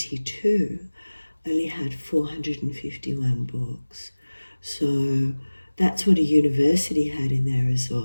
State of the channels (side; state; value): both; inverted; correlation -1.00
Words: only had 451 books. So that's what a university had in their